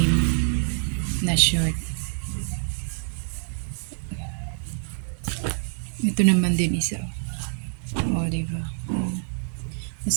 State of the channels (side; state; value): left; silent; digital silence